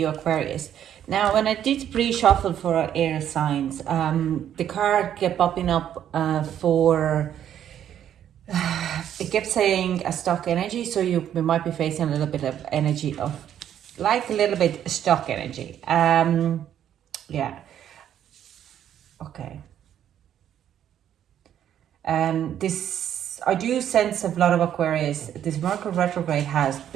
Aquarius. Now, when I did pre-shuffle for our air signs, the card kept popping up for, it kept saying a stuck energy. So we might be facing a little bit of energy of, like a little bit stuck energy. Yeah. Okay. This, I do sense a lot of Aquarius. This Mercury retrograde has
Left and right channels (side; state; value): left; quieter; 10.2 dB